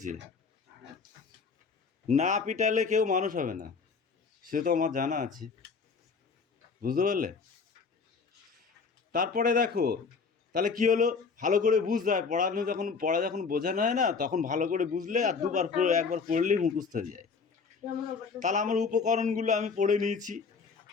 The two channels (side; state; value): right; quieter; 5.1 dB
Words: না পিটালে কেউ মানুষ হবে না, সে তো আমার জানা আছে। বুঝতে পারলে? তারপরে দেখো তাহলে কি হলো, ভালো করে বুঝতে হয়। পড়া যখন বোঝানো হয় না, তখন ভালো করে বুঝলে আর একবার পড়লেই মুখস্থ হয়ে যায়। তাহলে আমার উপকরণগুলো আমি পড়ে নিয়েছি,